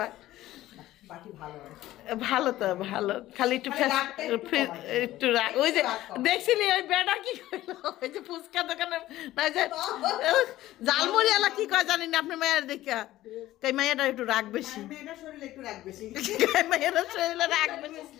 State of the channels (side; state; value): right; quieter; 15.3 dB